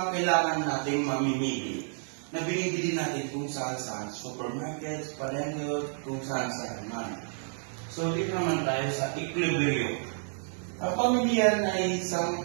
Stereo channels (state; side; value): silent; left; digital silence